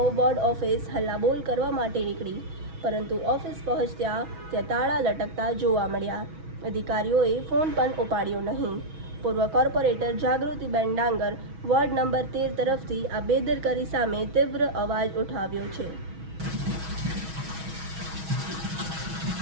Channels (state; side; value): late; left; 6.2 ms